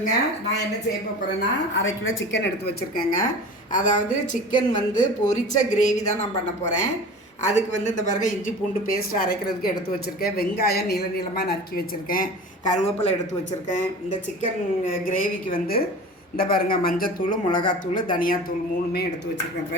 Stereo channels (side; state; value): both; normal; correlation 0.37